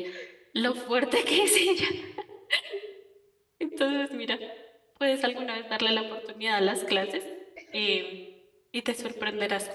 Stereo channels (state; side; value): identical; both; correlation 1.00